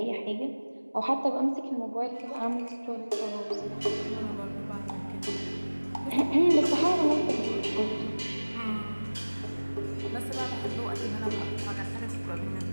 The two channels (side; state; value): both; inverted; correlation -1.00